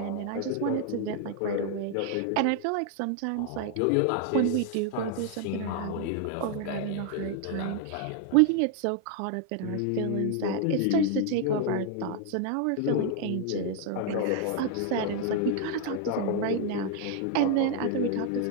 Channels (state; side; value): different; both; correlation 0.00